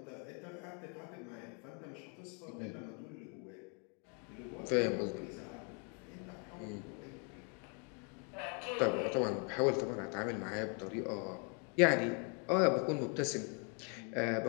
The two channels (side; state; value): right; quieter; 37.7 dB